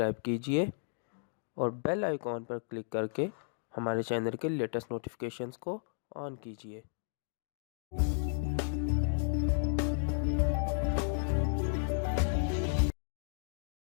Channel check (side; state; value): right; silent; digital silence